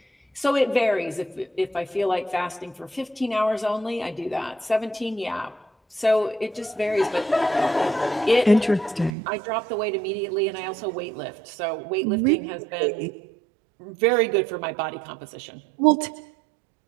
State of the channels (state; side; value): drops out; left; at 9.2 s